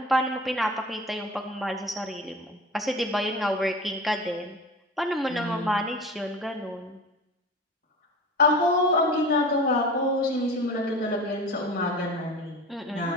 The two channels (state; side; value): normal; both; correlation 0.35